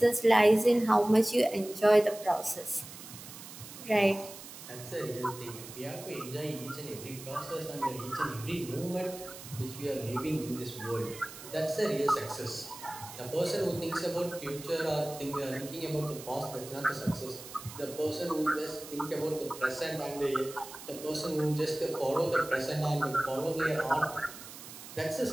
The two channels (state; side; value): noise; right; hiss, 14 dB below the sound